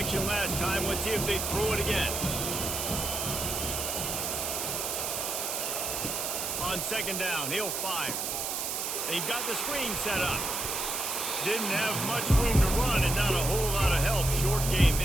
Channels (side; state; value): right; noise; hiss, 2 dB below the sound